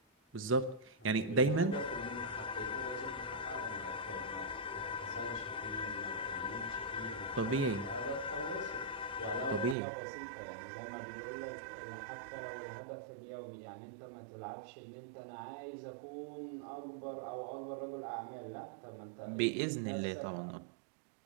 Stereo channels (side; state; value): left; drops out; at 9.8 s